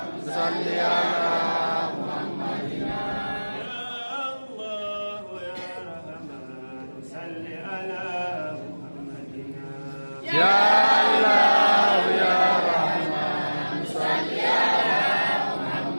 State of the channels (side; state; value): both; inverted; correlation -1.00